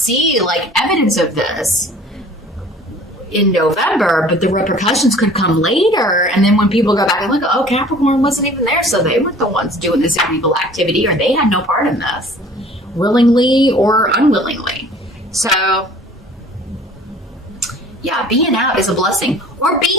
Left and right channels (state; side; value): normal; both; correlation 0.49